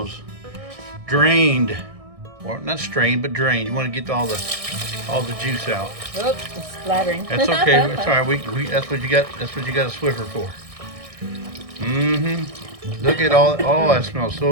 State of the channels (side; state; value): left; late; 1.6 ms